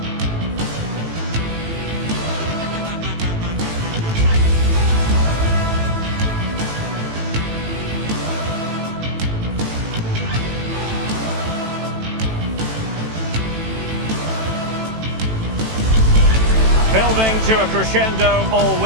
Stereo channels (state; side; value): late; left; 18 ms